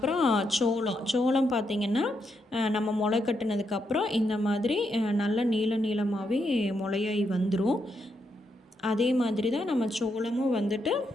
சோளம் பார்த்திங்கன்னா நம்ம முளை கட்டினதுக்கப்புறம் இந்த மாதிரி நல்லா நீளமாகவே முளையாகி வந்துடும். அதே மாதிரி தான் நம்ம சோளமும்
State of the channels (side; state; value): both; normal; correlation 0.80